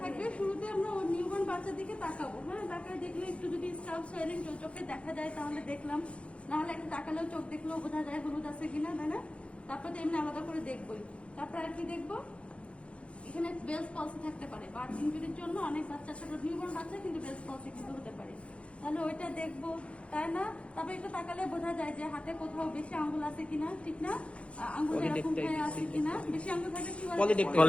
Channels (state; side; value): late; right; 0.061 ms